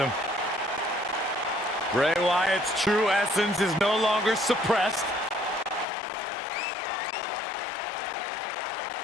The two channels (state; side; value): drops out; right; at 5.9 s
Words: Bray Wyatt's true essence is no longer suppressed.